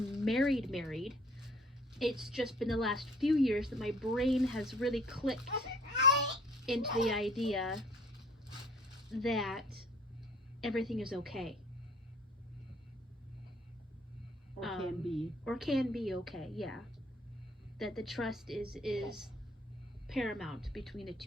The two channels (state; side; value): normal; both; correlation 0.55